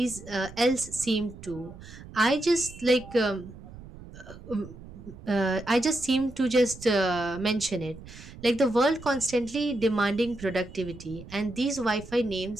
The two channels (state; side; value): noise; right; rumble, 16 dB below the sound